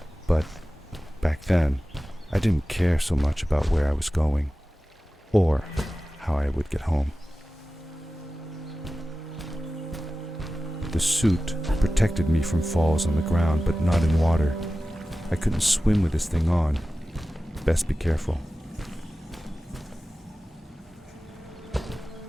but back then I didn't care so much about where I was going, or how I would get home. The suit protected me from falls on the ground, but not in water. I couldn't swim with this thing on. Best be careful.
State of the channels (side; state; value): both; normal; correlation 0.95